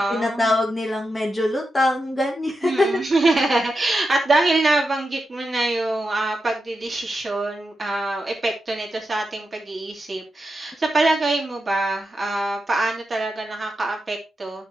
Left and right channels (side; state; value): both; normal; correlation 0.88